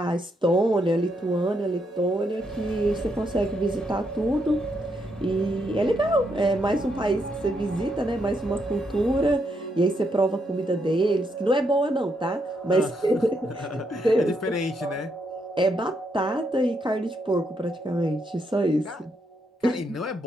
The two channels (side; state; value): both; normal; correlation 0.78